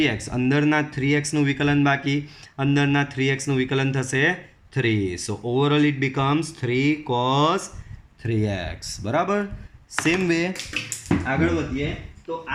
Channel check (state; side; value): identical; both; correlation 1.00